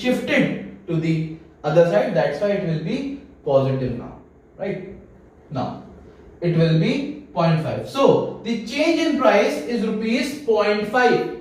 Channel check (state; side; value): identical; both; correlation 1.00